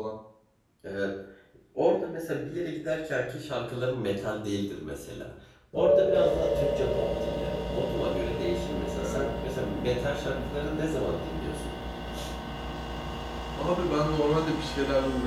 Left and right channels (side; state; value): both; identical; correlation 1.00